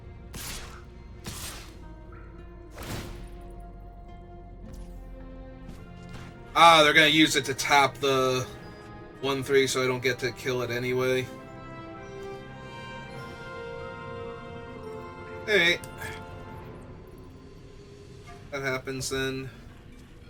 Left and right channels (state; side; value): identical; both; correlation 1.00